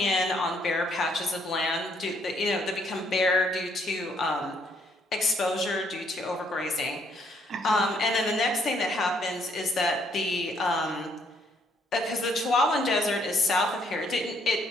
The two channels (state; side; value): normal; both; correlation 0.68